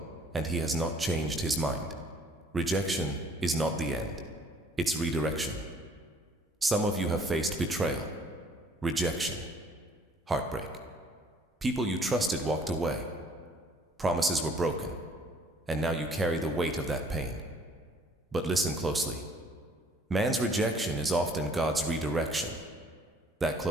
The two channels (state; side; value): normal; both; correlation 0.58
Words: and He has not changed His mind. Rejection is not the end. It's redirection. Some of you have faced betrayal, rejection, heartbreak. People you trusted walked away. Promises were broken, and now you carry the weight of that pain. But listen closely. Man's rejection is often God's redirection. That